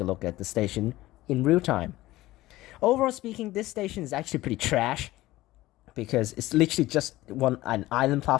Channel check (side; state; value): right; quieter; 17.2 dB